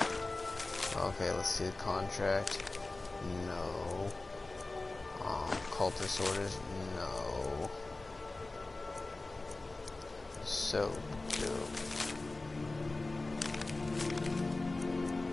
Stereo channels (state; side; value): quieter; right; 3.2 dB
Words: let's see the contract. No. Cultist orders? No. So dope.